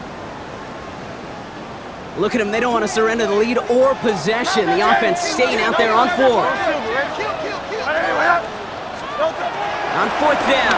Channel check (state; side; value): identical; both; correlation 1.00